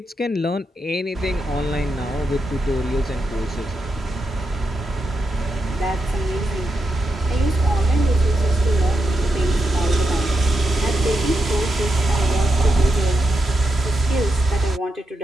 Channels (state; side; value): normal; both; correlation 0.85